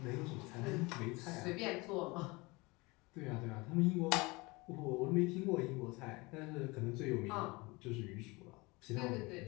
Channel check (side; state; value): right; quieter; 24.7 dB